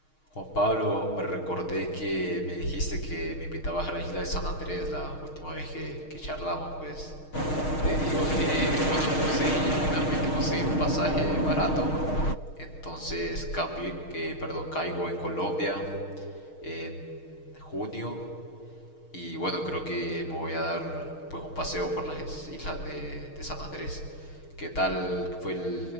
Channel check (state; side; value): late; right; 6.4 ms